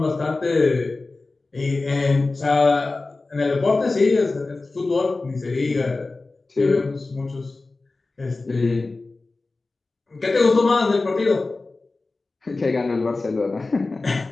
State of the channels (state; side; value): quieter; right; 3.5 dB